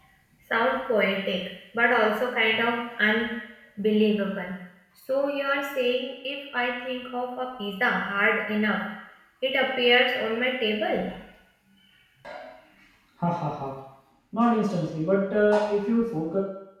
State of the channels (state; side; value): identical; both; correlation 1.00